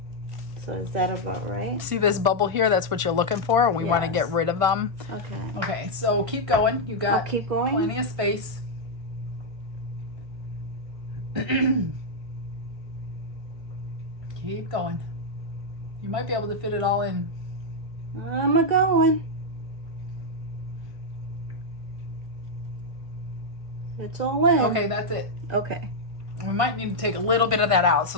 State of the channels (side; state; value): left; late; 1.5 ms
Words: So is that about right? See this bubble here? That's what you're looking for. We want to get rid of them. Okay. Okay, so keep going. You got keep going? Plenty of space. Keep going. You might be able to fit it all in. I'm a-going. It's all in. Okay, that's it. Okay. We might need to take a little bit of that out.